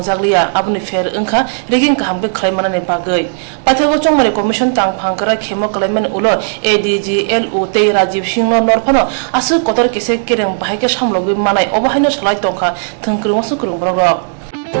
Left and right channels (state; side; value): silent; left; digital silence